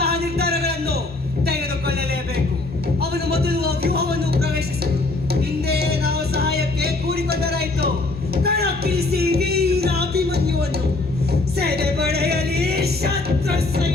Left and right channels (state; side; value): quieter; right; 3.2 dB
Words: ನಿರ್ಧಾರಗಳನ್ನು ತೆಗೆದುಕೊಳ್ಳಲೇಬೇಕು. ಅವನು ಮೊದಲು ವ್ಯೂಹವನ್ನು ಪ್ರವೇಶಿಸಲು ಹಿಂದೆ ನಾವು ಸಹಾಯಕ್ಕೆ ಕೂಡಿಕೊಂಡರಾಯಿತು. ಕಣಕ್ಕಿಳಿಸಿ ವೀರ ಅಭಿಮನ್ಯುವನ್ನು, ಸೇನೆ ಪಡೆಯಲಿ ಶತ್ರು